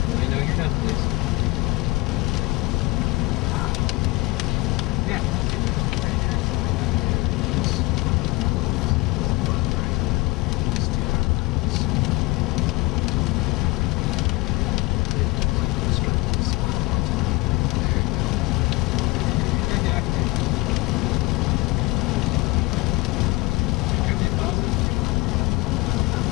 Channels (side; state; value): right; quieter; 22.4 dB